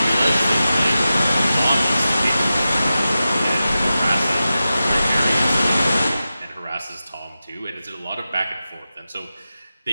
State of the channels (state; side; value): inverted; both; correlation -0.93